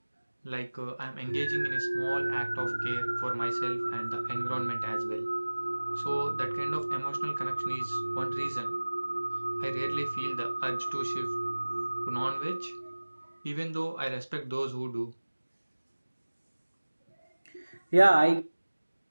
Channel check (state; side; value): inverted; both; correlation -1.00